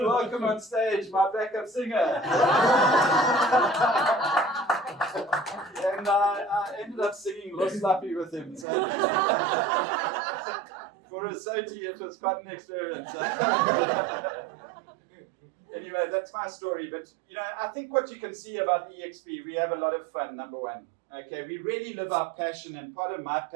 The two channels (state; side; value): drops out; left; at 8.7 s